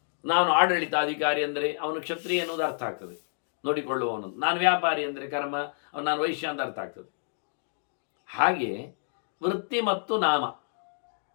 ನಾನು ಆಡಳಿತಾಧಿಕಾರಿ ಅಂದರೆ ಅವನು ಕ್ಷತ್ರಿಯ ಎನ್ನುವುದು ಅರ್ಥ ಆಗ್ತದೆ, ನೋಡಿಕೊಳ್ಳುವವನು. ನಾನು ವ್ಯಾಪಾರಿ ಅಂದರೆ ಕರ್ಮ, ನಾನು ವೈಶ್ಯ ಅಂತ ಅರ್ಥ ಆಗ್ತದೆ. ಹಾಗೆ ವೃತ್ತಿ ಮತ್ತು ನಾಮ.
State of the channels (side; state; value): right; silent; digital silence